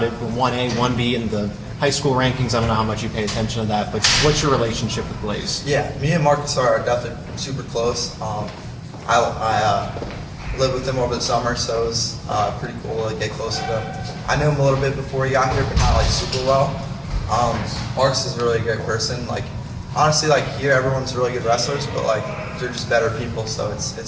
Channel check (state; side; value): identical; both; correlation 1.00